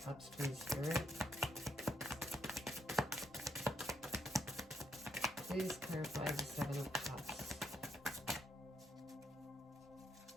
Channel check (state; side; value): normal; both; correlation 0.75